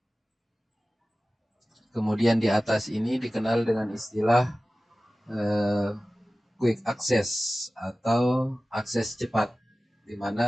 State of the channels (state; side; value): normal; both; correlation 0.96